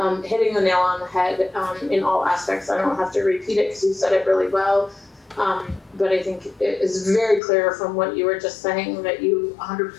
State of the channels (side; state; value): right; drops out; at 7.4 s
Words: hitting the nail on the head in all aspects. I don't have to repeat it because you said it really well. But I think it is very clear from what you were just saying that you